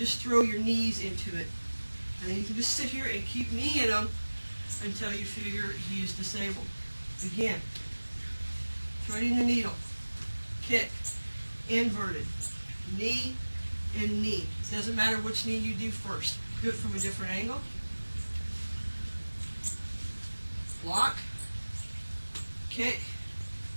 throw your knees into it. And then you can just sit here and keep kneeing them until you figure he is disabled. Again, threading the needle, kick, inverted, knee, and knee. Doesn't matter which knee you do first. Do it from a different angle. Block, kick,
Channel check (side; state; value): both; inverted; correlation -1.00